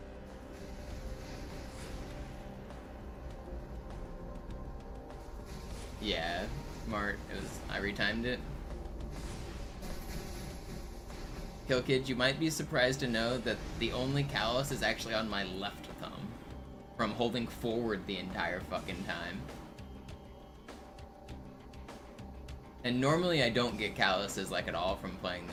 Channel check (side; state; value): both; identical; correlation 1.00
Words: Yeah, smart. I retimed it. Kill Kid, you might be surprised to know that the only callus is actually on my left thumb. From holding forward the entire fucking time. And normally I don't get calluses like at all from playing